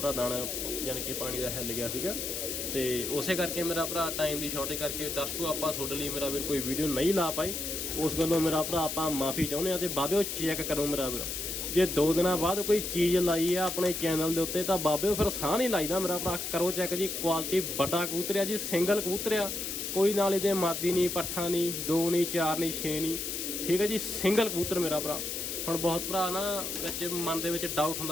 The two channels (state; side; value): noise; left; hiss, 4 dB below the sound